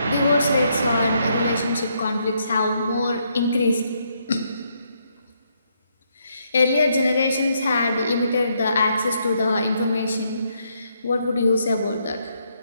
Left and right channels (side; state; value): both; inverted; correlation -0.75